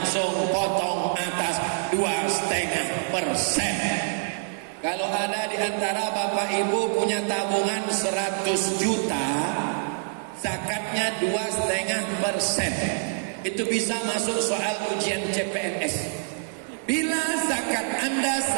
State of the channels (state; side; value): silent; left; digital silence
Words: potong atas 2,5%. Kalau ada di antara Bapak Ibu punya tabungan 100 juta, zakatnya 2,5%. Itu bisa masuk soal ujian CPNS. Bila zakat Anda